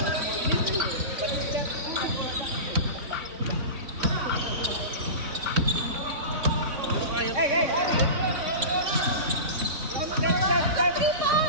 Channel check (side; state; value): left; late; 3.2 ms